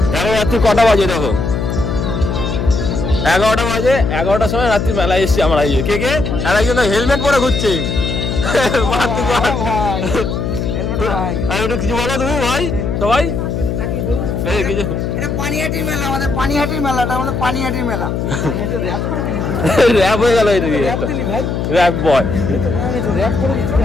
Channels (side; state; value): left; noise; hum, 2 dB below the sound